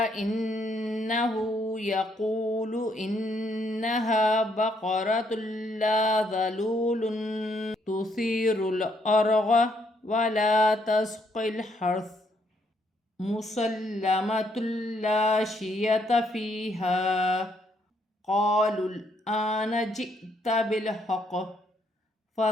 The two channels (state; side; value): normal; both; correlation 0.72